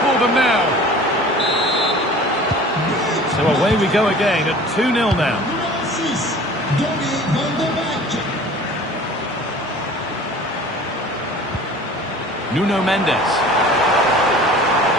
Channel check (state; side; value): normal; both; correlation 0.44